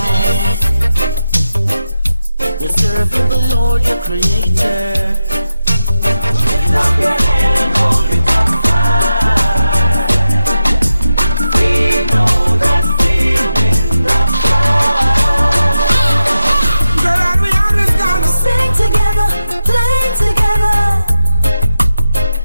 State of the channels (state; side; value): inverted; both; correlation -0.90